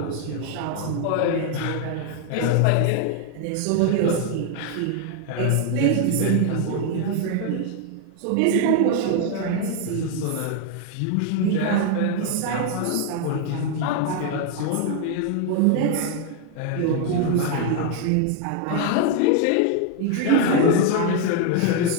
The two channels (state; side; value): different; both; correlation 0.00